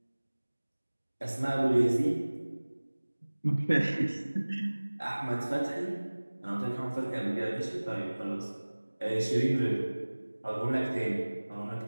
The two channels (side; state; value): both; inverted; correlation -1.00